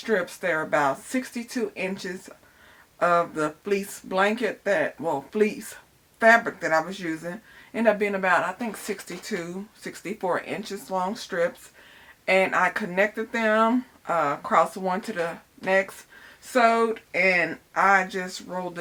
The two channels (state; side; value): identical; both; correlation 1.00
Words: They're about 62 inches of the fleece blanket fleece fabric that I was using. Ended up being about, I think, 62, 64 inches long strips. And I connected them across one to the next, sewed, and I just rolled